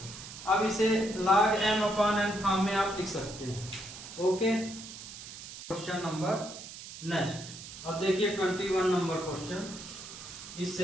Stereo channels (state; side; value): noise; right; hiss, 13 dB below the sound